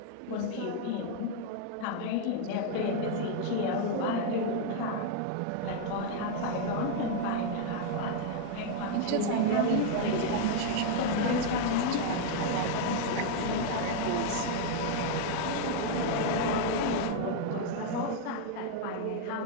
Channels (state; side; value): different; both; correlation 0.00